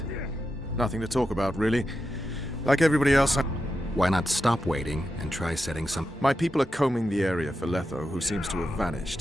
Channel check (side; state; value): both; normal; correlation 0.88